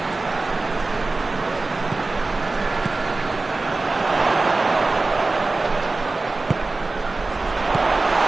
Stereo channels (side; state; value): left; quieter; 3.4 dB